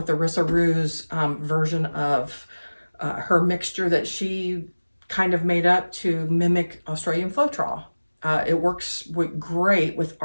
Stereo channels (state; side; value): inverted; both; correlation -1.00